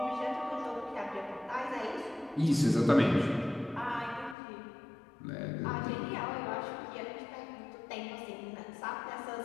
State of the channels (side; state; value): right; drops out; at 4.4 s